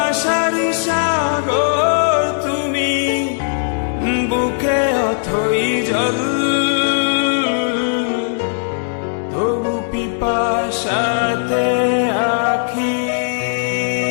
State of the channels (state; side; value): silent; right; digital silence